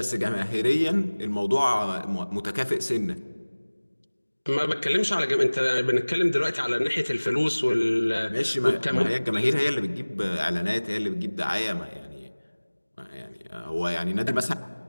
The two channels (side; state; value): both; inverted; correlation -1.00